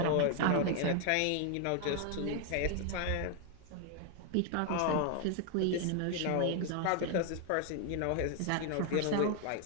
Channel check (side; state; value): both; different; correlation 0.00